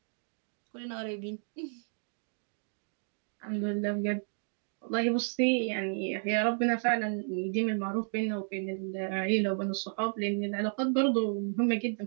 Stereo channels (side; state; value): left; silent; digital silence